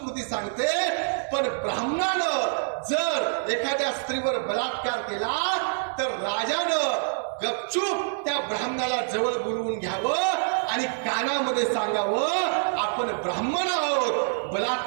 सांगते. पण ब्राह्मणानं जर एखाद्या स्त्रीवर बलात्कार केला तर राजानं गपचूप त्या ब्राह्मणाला जवळ बोलवून घ्यावं आणि कानामध्ये सांगावं, आपण ब्राह्मण आहोत,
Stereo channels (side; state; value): left; silent; digital silence